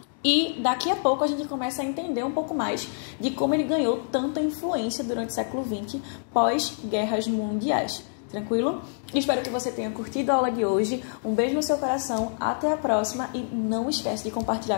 E daqui a pouco a gente começa a entender um pouco mais de como ele ganhou tanta influência durante o século XX, pós-guerras mundiais. Tranquilo? Espero que você tenha curtido a aula de hoje. Um beijo no seu coração, até a próxima e não esquece de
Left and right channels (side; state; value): right; silent; digital silence